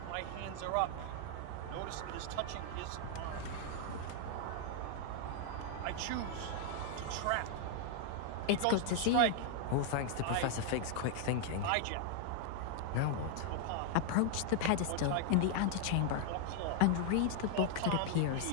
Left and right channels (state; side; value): different; both; correlation 0.00